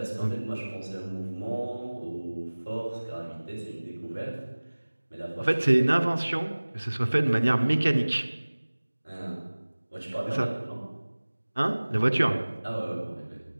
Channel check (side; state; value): both; inverted; correlation -1.00